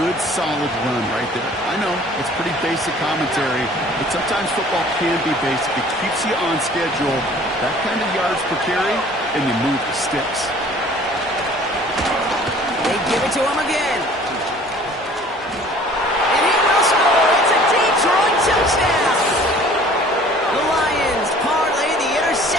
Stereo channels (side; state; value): both; normal; correlation 0.51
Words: solid run right there. I know, it's pretty basic commentary, but sometimes football can be basic. It keeps you on schedule. That kind of yards per carry, and you move the sticks. They give it to him again. And he will score. It's a Detroit touchdown. The Lions parlay the